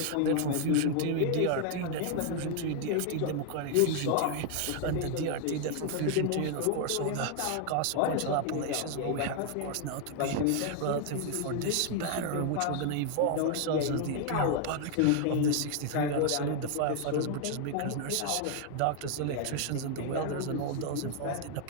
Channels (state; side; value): different; both; correlation 0.00